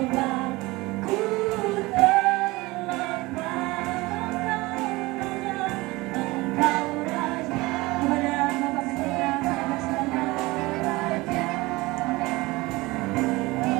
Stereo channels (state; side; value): quieter; left; 21.7 dB